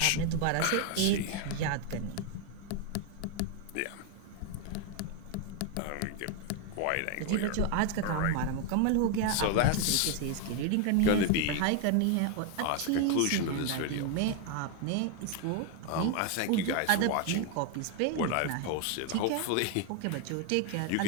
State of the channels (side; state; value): both; different; correlation 0.01